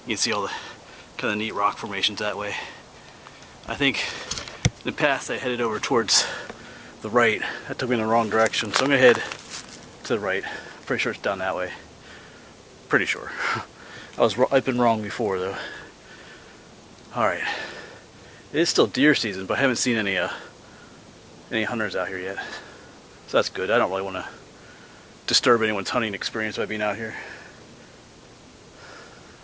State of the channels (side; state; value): both; identical; correlation 1.00